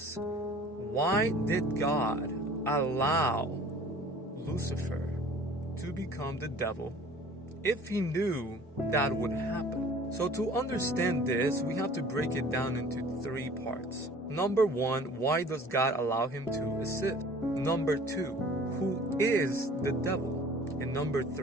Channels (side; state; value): both; normal; correlation 0.48